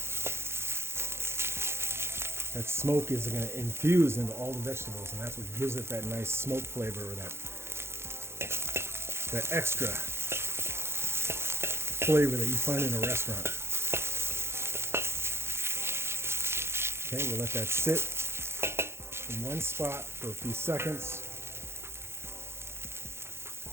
That smoke is going to infuse into all the vegetables, and that's what gives it that nice smoke flavor, or that extra flavor that you find in a restaurant. Okay, we'll let that sit in one spot for a few seconds.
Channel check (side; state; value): left; late; 0.12 ms